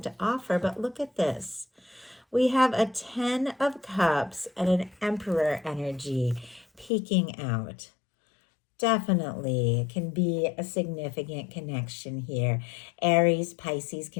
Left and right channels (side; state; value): right; drops out; at 6.9 s